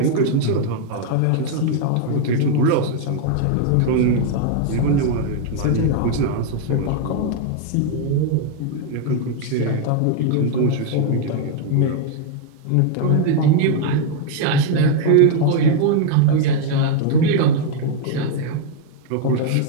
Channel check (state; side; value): different; both; correlation 0.00